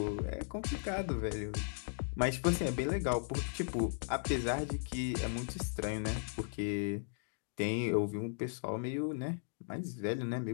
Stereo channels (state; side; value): silent; right; digital silence